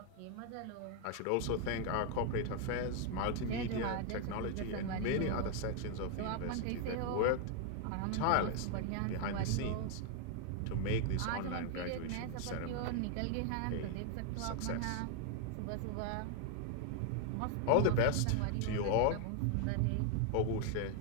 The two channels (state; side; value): different; both; correlation 0.00